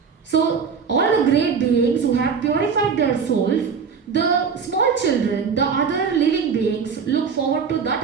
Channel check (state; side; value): quieter; left; 6.1 dB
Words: So all the great beings who have purified their souls, the small children, the other living beings look forward to